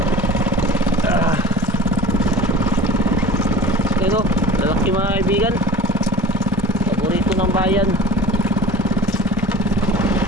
Ito, lalaki mga kaibigan. Paborito ng bayan.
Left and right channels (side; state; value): both; normal; correlation 0.40